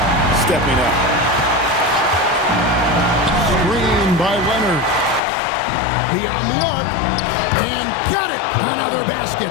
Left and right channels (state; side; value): drops out; right; at 5.2 s